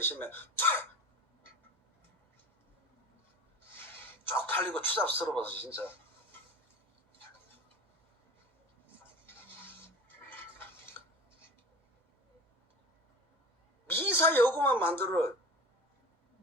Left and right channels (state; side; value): normal; both; correlation 0.35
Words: 쪽팔리고 추잡스러워서 진짜. 미사 여구만 만들어.